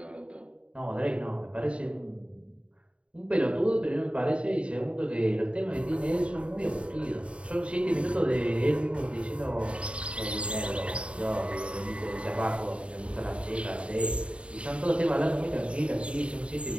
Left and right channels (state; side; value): late; left; 0.059 ms